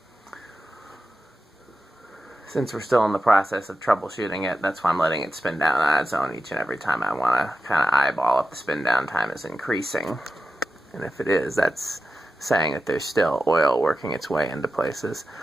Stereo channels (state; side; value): normal; both; correlation 0.91